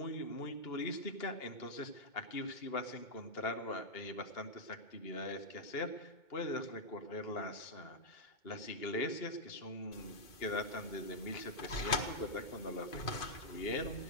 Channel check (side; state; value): right; late; 2.5 ms